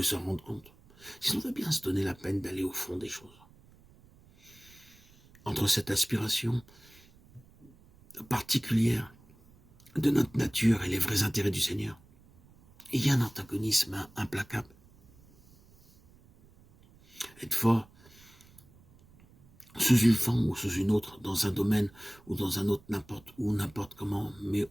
s'en rendre compte. Si on veut bien se donner la peine d'aller au fond des choses. Entre cette aspiration particulière de notre nature et les vrais intérêts du Seigneur, il y a un antagonisme implacable. Être fort sous une forme ou sous une autre, dans un domaine ou dans un autre, n'importe où, n'importe comment, mais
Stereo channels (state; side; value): noise; right; rumble, 27 dB below the sound